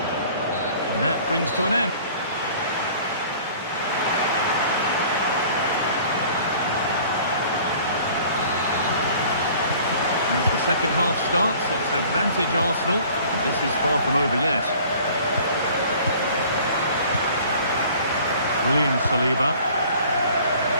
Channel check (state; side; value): inverted; both; correlation -0.50